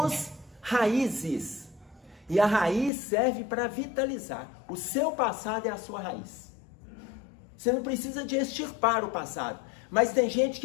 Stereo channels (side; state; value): right; drops out; at 2.9 s